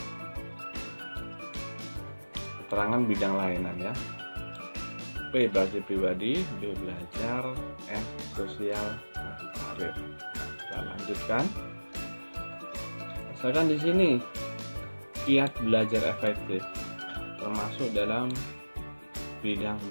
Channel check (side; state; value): both; inverted; correlation -1.00